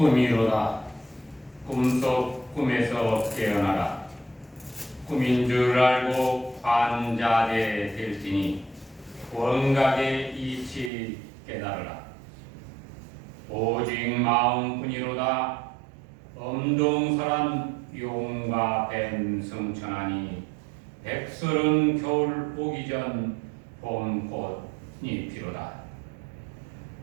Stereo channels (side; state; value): left; drops out; at 10.9 s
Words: 꿈속 꿈에서 깨어나라. 꿈인 줄 알고 관자되 될지니 원각의 이치 깨달으라. 오직 마음뿐이로다. 엄동설한 용과 뱀 승천하니 백설은 겨울 오기 전 봄꽃이 피로다.